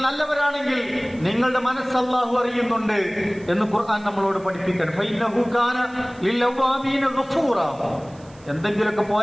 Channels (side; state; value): right; noise; hiss, 28 dB below the sound